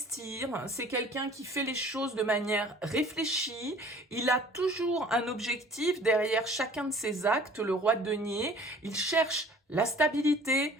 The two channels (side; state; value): both; normal; correlation 0.50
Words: c'est quelqu'un qui fait les choses de manière réfléchie, il a toujours un objectif derrière chacun de ses actes, le roi de denier, il cherche la stabilité,